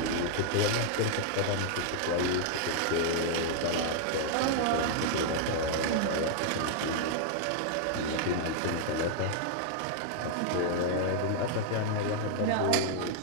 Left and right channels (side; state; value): both; different; correlation 0.00